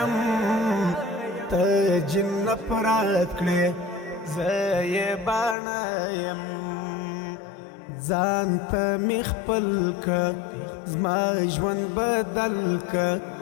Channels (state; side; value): drops out; right; at 5.6 s